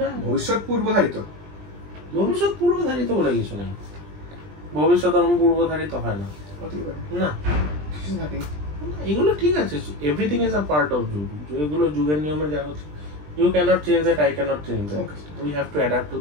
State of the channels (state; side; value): late; left; 20 ms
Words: ভবিষ্যৎ পূর্বধারিত, ভবিষ্যৎ পূর্বধারিত বলে কিছু নেই, ভবিষ্যৎ পূর্বধারিত হয় না, না এগুলো ঠিক আছে, everything is a part of যুগ, এগুলো যুগের নিয়মে যা হচ্ছে, you can't change that, I can't change that, we have to adapt to